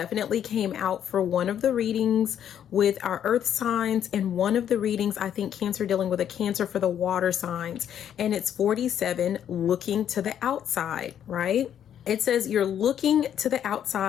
came out for one of the readings with our earth signs, and one of the readings, I think, Cancer dealing with a Cancer for the water signs, and it's 47, looking to the outside, right? It says you're looking to the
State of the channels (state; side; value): quieter; right; 9.6 dB